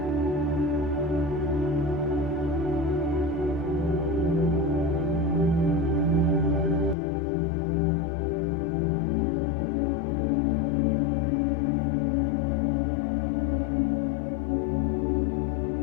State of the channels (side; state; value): right; drops out; at 7.0 s